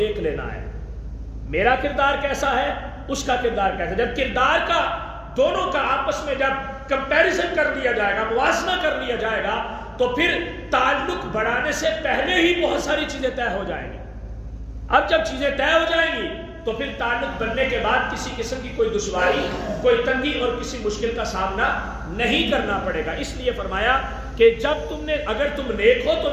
لینا ہے، میرا کردار کیسا ہے، اس کا کردار کیسا ہے۔ جب کردار کا دونوں کا آپس میں جب کمپیریزن کر لیا جائے گا، موازنہ کر لیا جائے گا، تو پھر تعلق بڑھانے سے پہلے ہی بہت ساری چیزیں طے ہو جائیں گی۔ اب جب چیزیں طے ہو جائیں گی تو پھر تعلق بننے کے بعد کسی قسم کی کوئی دشواری، کوئی تنگی اور کسی مشکل کا سامنا نہیں کرنا پڑے گا۔ اس لیے فرمایا کہ جب اگر تم نیک ہو تو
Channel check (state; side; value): identical; both; correlation 1.00